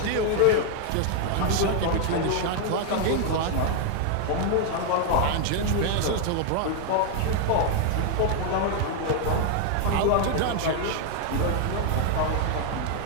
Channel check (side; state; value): both; different; correlation 0.00